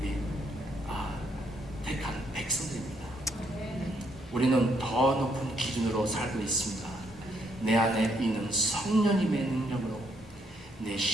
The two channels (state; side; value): normal; both; correlation 0.72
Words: 택한 백성들입니다. 우리는 더 높은 기준으로 살고 있습니다. 내 안에 있는 성령님의 능력으로 내